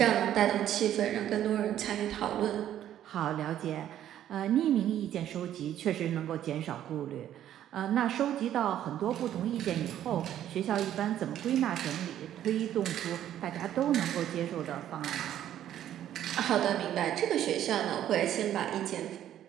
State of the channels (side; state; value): left; quieter; 11.4 dB